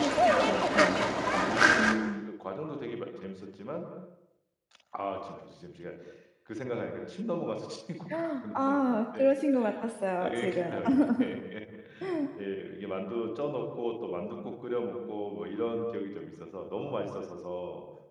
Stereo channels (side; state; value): both; identical; correlation 1.00